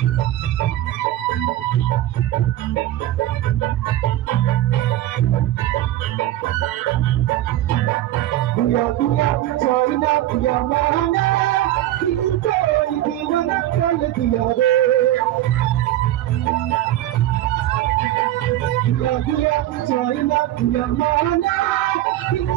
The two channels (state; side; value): quieter; left; 14.0 dB